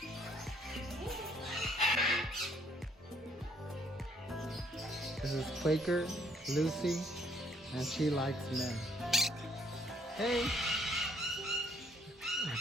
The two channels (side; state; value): both; normal; correlation 0.66